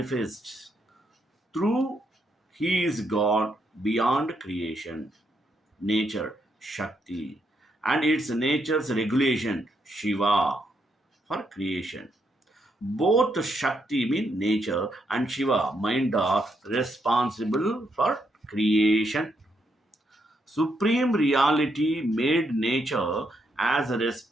through he is God beyond creation, nature, Shakti, and its nature's regulation, Shiva, for creation. Both Shakti mean nature and Shiva mind are responsible for creation. Supreme reality made nature as a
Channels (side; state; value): both; normal; correlation 0.78